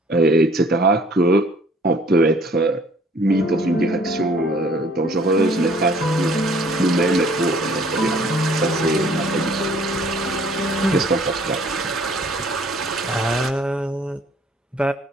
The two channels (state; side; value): normal; both; correlation 0.57